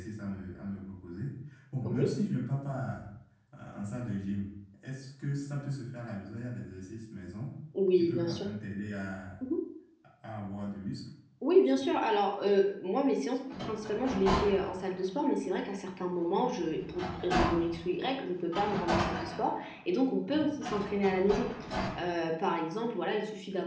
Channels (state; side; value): identical; both; correlation 1.00